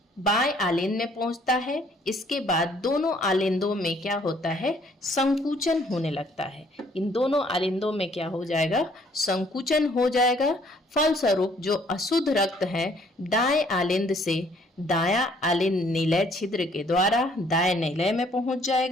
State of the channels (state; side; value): normal; both; correlation 0.62